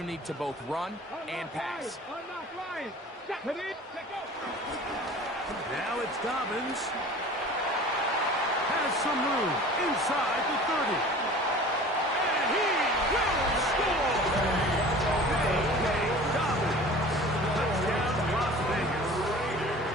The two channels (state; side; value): normal; both; correlation 0.42